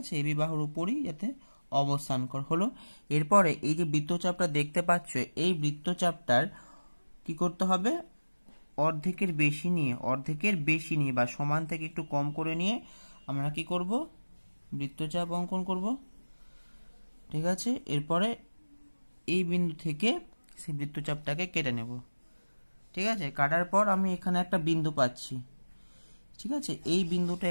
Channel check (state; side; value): inverted; both; correlation -1.00